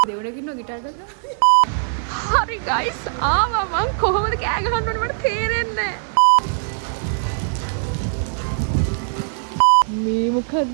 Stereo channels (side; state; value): left; silent; digital silence